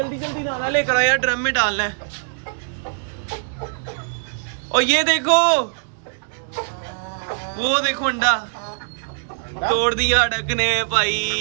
जल्दी दाना लेकर आया, ड्रम में डालना है। और ये देखो, वो देखो अंडा तोड़ दिया डक ने भाई।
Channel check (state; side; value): silent; left; digital silence